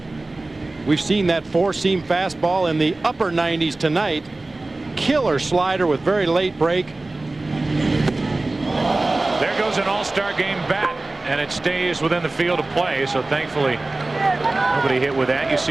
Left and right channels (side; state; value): left; quieter; 3.0 dB